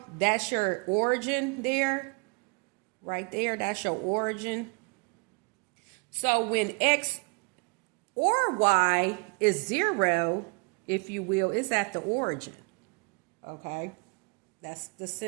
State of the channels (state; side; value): quieter; left; 32.3 dB